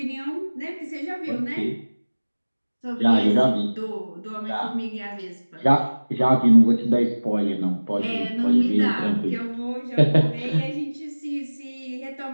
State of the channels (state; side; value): inverted; both; correlation -1.00